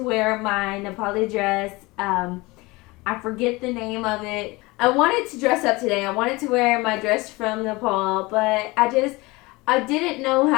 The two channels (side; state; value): right; quieter; 22.9 dB